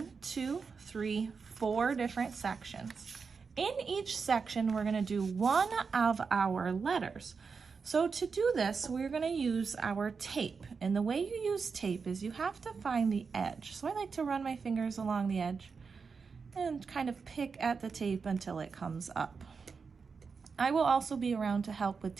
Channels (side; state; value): left; quieter; 5.3 dB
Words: 2, 3, 4 different sections. In each section, we're going to do one of our letters. So to do this, we're going to use our tape. And the way you use tape is you have to find the edge. So I like to run my fingers along the edge and kind of pick at the tape until it comes up. I will also be around to help with